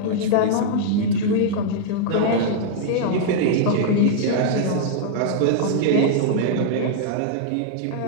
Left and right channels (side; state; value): both; different; correlation -0.01